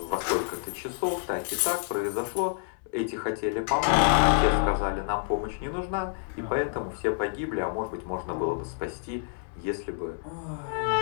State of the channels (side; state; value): right; silent; 59 dB below the other